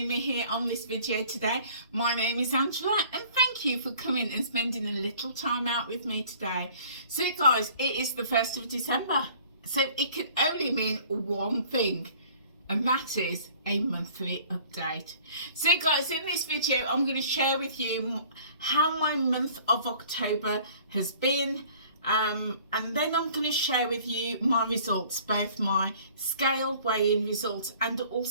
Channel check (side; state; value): both; inverted; correlation -0.52